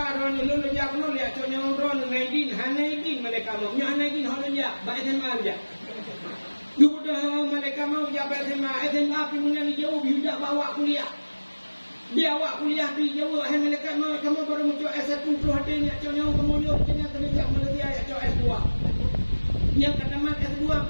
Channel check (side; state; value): both; inverted; correlation -1.00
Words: ron lu jak nu lihat contohnya ron naidin hanaidin mereka mau. Nya hanaidin holon jak ba SMA aja. Duda mereka mau jak SMA pi punya ni jauh biudak bawa kuliah. Dia awak kuliah pi jauh hai mereka mau kamu baru muncul S1 pro hati ni contohnya kamu yo kena jak melati ayat S2. Yang kata mat S2